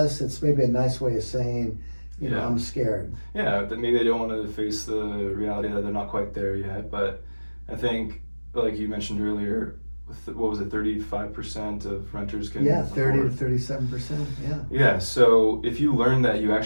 It's maybe a nice way of saying, I'm scared. Yeah, that maybe they don't want to face the reality that they're not quite there yet. But I think, like you mentioned earlier, what was it, 35% of renters can 30 to 37%, Yeah, so if you learn that you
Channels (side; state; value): both; inverted; correlation -1.00